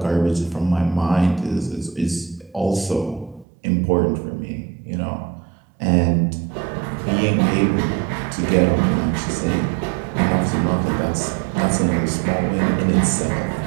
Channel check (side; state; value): left; drops out; at 3.5 s